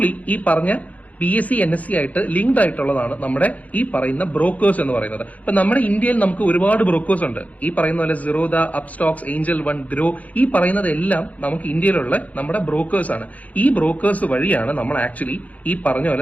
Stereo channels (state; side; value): late; right; 0.072 ms